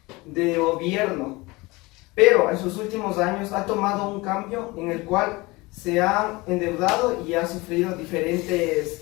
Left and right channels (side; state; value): right; quieter; 22.9 dB